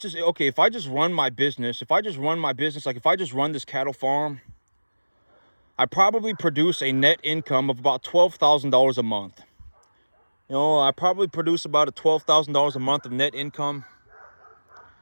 okay, if I just run my business, like if I just run this cattle farm, I probably produce a net income of about $12,000 a month. I probably produce about $12,000 a month of net income.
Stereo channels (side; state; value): both; inverted; correlation -1.00